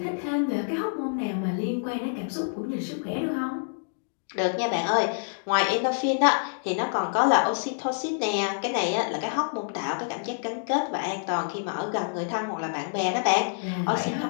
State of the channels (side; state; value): right; silent; digital silence